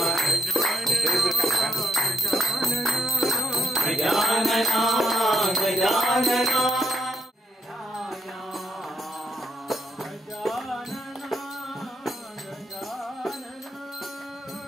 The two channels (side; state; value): both; normal; correlation 0.78